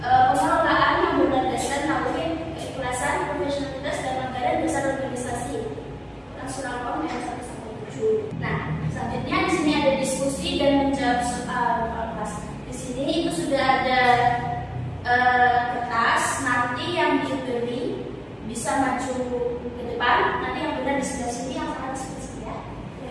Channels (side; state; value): both; identical; correlation 1.00